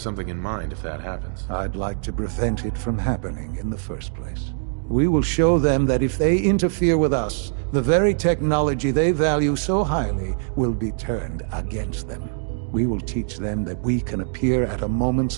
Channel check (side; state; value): left; silent; digital silence